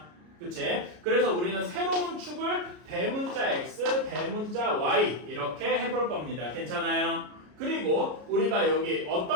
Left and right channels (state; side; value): late; left; 33 ms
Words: 그치? 그래서 우리는 새로운 축을 대문자 x, 대문자 y 이렇게 해볼 겁니다. 괜찮아요? 그리고 우리가 여기